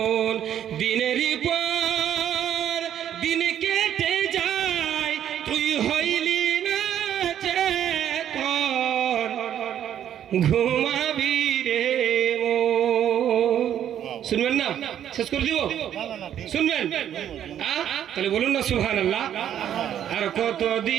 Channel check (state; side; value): quieter; left; 10.2 dB